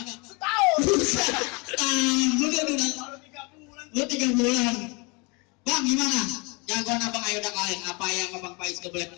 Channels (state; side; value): quieter; right; 29.0 dB